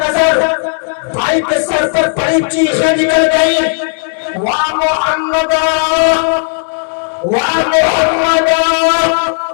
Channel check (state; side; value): silent; right; digital silence